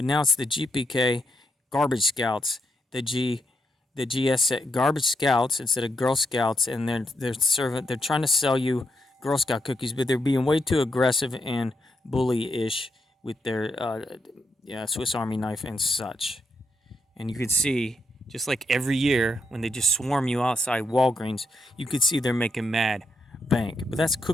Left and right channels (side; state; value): both; normal; correlation 0.80